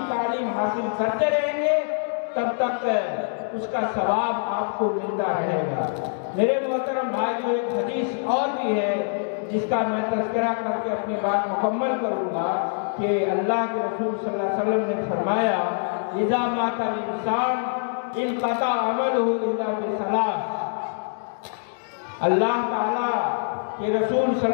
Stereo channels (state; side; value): silent; right; digital silence